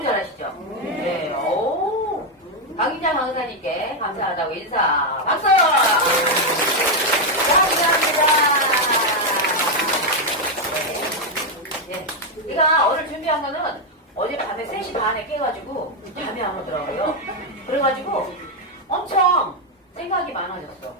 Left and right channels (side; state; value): both; normal; correlation 0.02